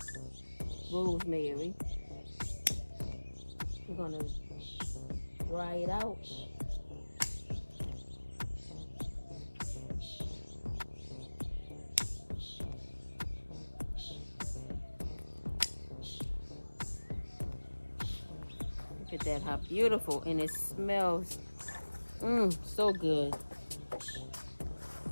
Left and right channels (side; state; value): both; inverted; correlation -1.00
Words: rosemary. We're gonna dry it out. Look at that, how beautiful, and it smells so good.